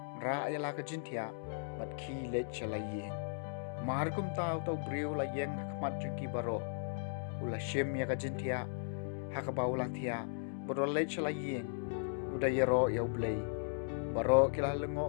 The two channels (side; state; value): right; silent; digital silence